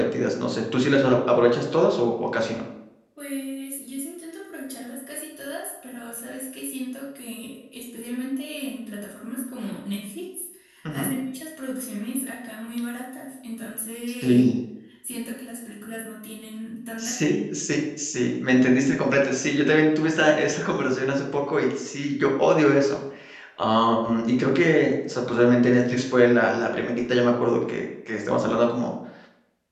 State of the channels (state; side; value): identical; both; correlation 1.00